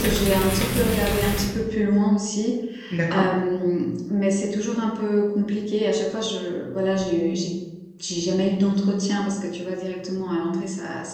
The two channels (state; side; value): identical; both; correlation 1.00